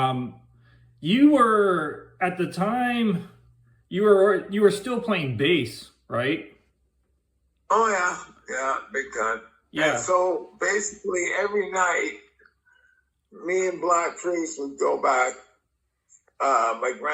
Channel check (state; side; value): identical; both; correlation 1.00